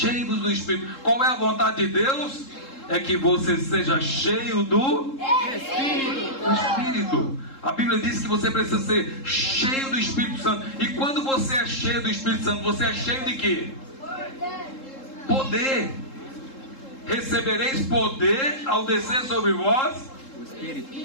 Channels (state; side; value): late; right; 3.7 ms